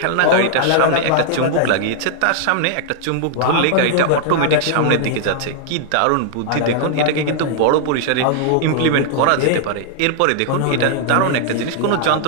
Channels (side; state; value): both; different; correlation -0.01